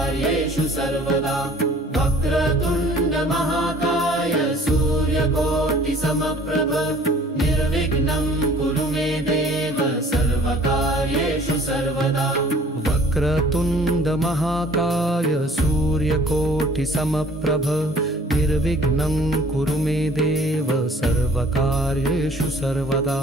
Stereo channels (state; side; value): normal; both; correlation 0.53